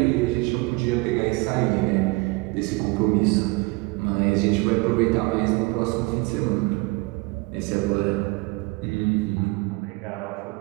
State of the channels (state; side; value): quieter; left; 25.2 dB